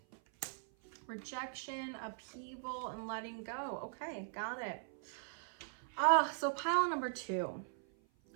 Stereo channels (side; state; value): left; silent; 51 dB below the other